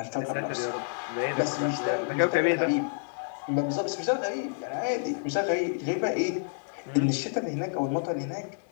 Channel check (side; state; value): right; silent; digital silence